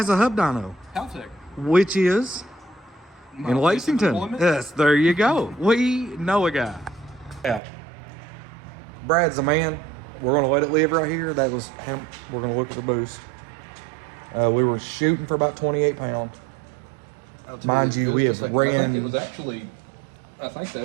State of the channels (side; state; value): left; drops out; at 7.6 s